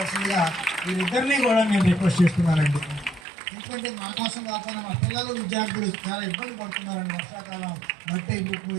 వీరిద్దరినీ కూడా నేను రిక్వెస్ట్ చేస్తున్నానండి. ఎందుకంటే మా కోసం కాకుండా మా పిల్లలు, విద్యార్థులు చాలా ఇబ్బంది పడుతున్నారండి. వర్షాకాలం మట్టి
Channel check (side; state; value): left; drops out; at 3.2 s